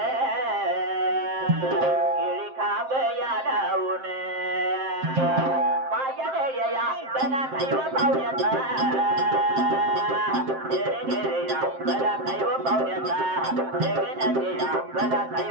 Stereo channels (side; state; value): left; late; 7.6 ms